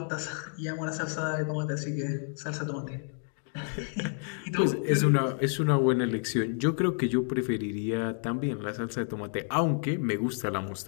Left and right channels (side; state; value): right; silent; 56 dB below the other